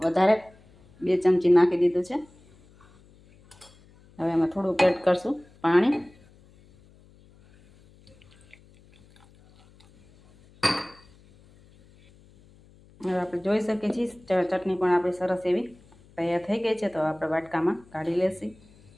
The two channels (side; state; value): left; noise; hum, 28 dB below the sound